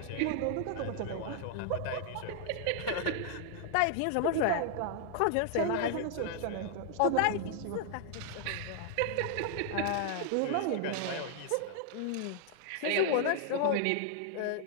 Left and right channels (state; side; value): different; both; correlation 0.00